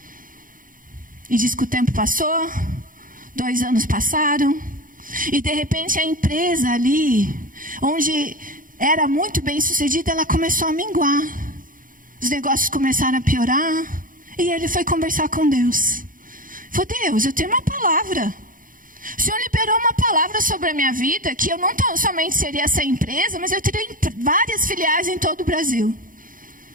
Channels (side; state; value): left; late; 0.40 ms